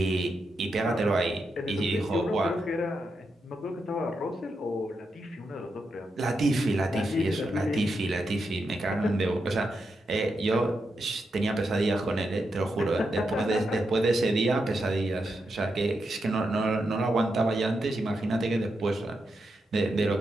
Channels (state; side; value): normal; both; correlation 0.85